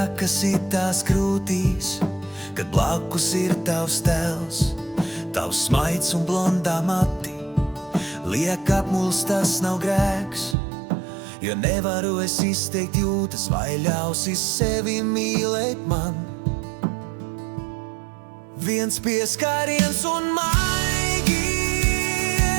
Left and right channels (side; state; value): left; drops out; at 10.6 s